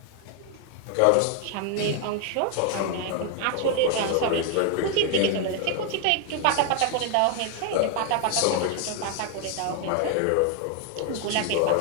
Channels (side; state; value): both; different; correlation 0.00